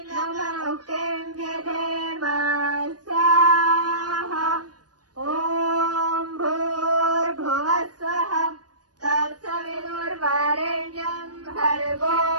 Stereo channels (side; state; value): left; late; 0.69 ms